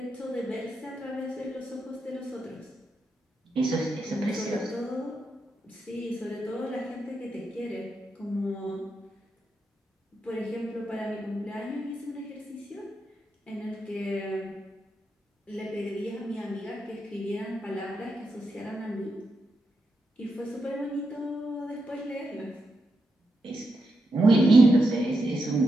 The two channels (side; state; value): both; normal; correlation 0.85